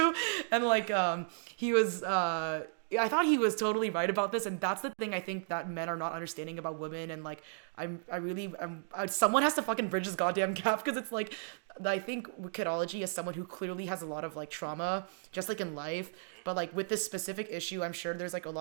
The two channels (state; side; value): silent; left; digital silence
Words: and like he was I thought he was totally right about this, and that's the thing I think that men are not understanding about women. And like someone has to fucking bridge this goddamn gap, because it's like I think kidology is someone who clearly has a lot of like trauma, just like in life, Mm-hmm. but like with this specific issue, I'm sure there's like a